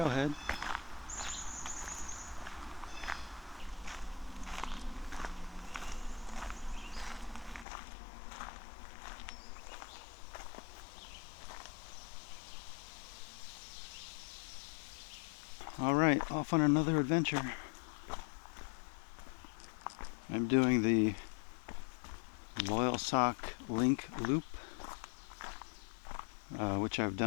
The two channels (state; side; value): drops out; right; at 7.7 s